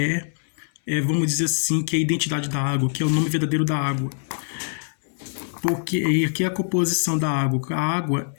vamos dizer assim, que é a identidade da água, que é o nome verdadeiro da água. Porque aqui é a composição da água. A água,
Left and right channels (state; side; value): silent; right; digital silence